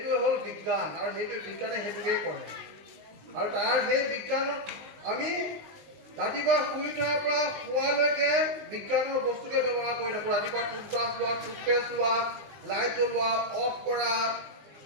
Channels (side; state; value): left; late; 19 ms